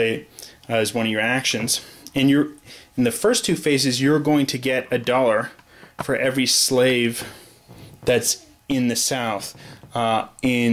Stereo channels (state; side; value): identical; both; correlation 1.00